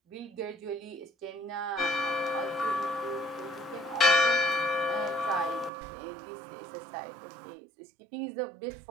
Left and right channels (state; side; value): drops out; left; at 5.7 s